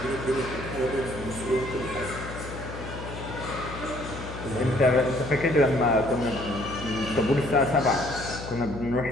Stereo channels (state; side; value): noise; left; hum, 10 dB below the sound